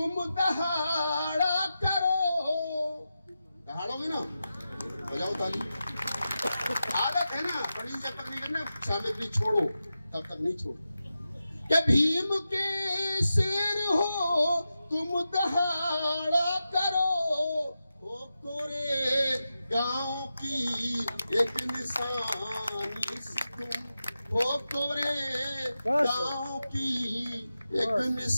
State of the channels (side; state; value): both; inverted; correlation -0.91